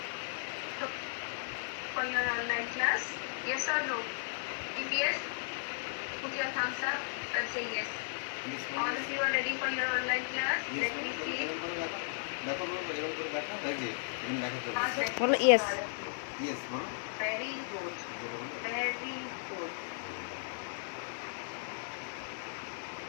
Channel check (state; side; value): silent; right; 54 dB below the other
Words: For your online class, yes or no? If yes, put your thumbs up and say yes. All of you are ready for your online class? Let me see. দেখো বলো, এরকম করে দেখো, এই যে এখানে দেখা চলে Ask আসছে। them. বলো ইয়েস। ইয়েস বলো, Very good. জোরে বলো। Very good.